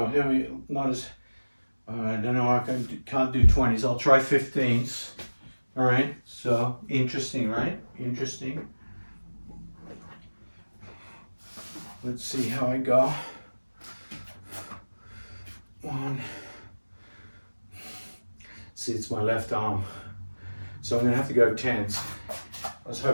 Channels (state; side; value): inverted; both; correlation -1.00